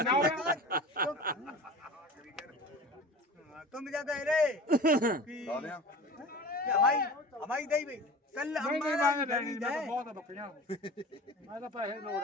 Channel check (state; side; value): normal; both; correlation 0.36